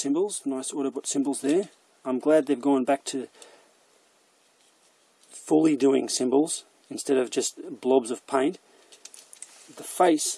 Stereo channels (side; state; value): both; identical; correlation 1.00